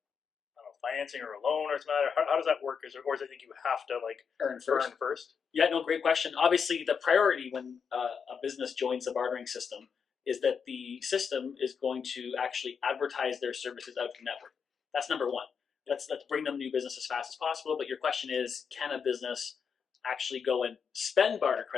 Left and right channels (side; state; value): right; quieter; 6.4 dB